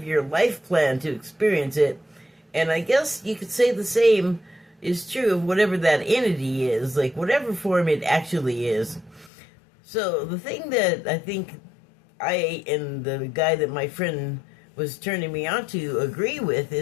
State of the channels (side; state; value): right; drops out; at 9.3 s